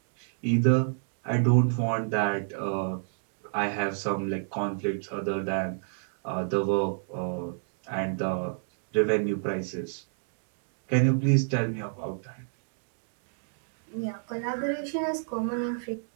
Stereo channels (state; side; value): silent; left; digital silence